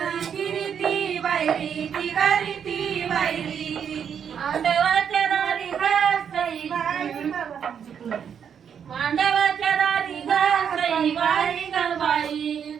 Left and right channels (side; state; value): left; quieter; 7.8 dB